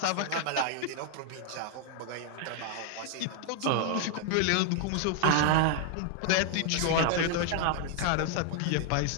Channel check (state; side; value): different; both; correlation 0.00